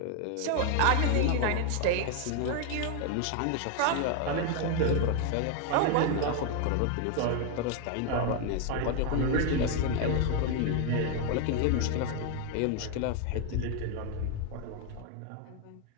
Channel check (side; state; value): both; different; correlation 0.01